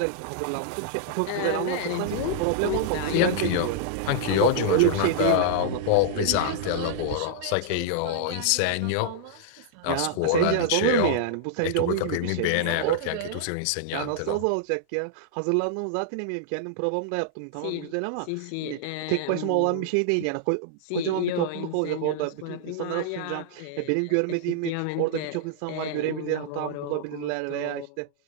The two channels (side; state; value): both; different; correlation -0.01